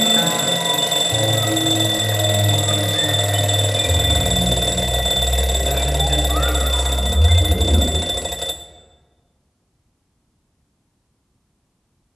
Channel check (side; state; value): both; identical; correlation 1.00